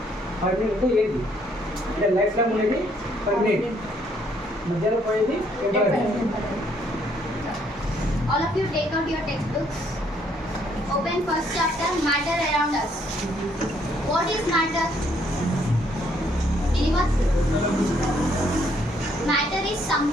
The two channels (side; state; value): both; normal; correlation 0.68